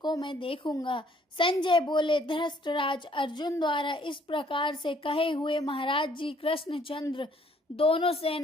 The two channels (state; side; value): normal; both; correlation 0.63